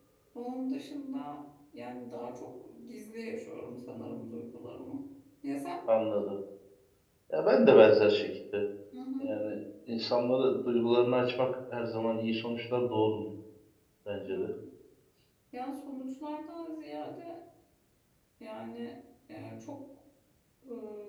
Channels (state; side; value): identical; both; correlation 1.00